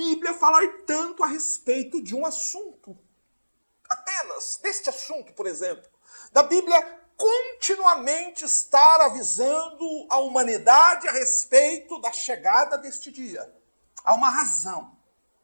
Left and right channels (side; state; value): both; inverted; correlation -1.00